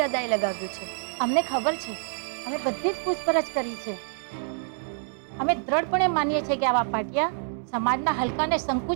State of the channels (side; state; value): left; silent; 60 dB below the other